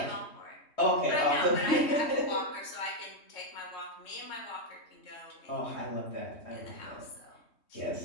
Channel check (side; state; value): right; late; 3.2 ms